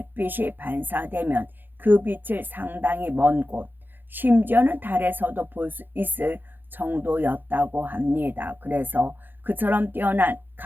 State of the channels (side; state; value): left; late; 0.092 ms